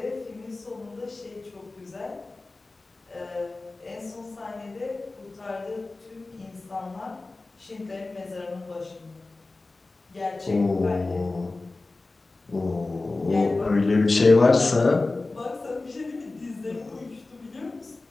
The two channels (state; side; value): quieter; right; 3.3 dB